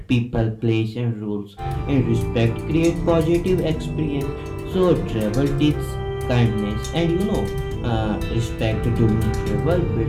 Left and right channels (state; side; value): identical; both; correlation 1.00